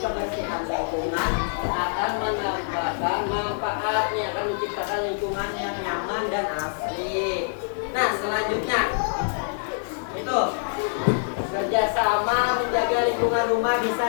kebersihan lingkungan akan mendapatkan manfaatnya, akan menciptakan lingkungan yang nyaman dan asri. Nah, selanjutnya itu kerjasama menjaga lingkungan rumah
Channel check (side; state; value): right; silent; digital silence